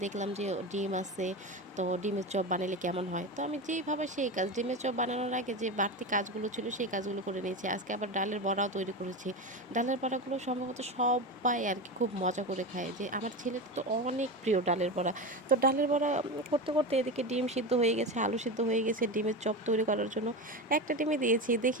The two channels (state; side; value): normal; both; correlation 0.22